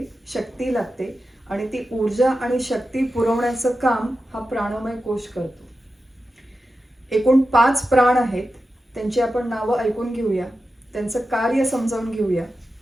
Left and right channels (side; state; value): both; normal; correlation 0.91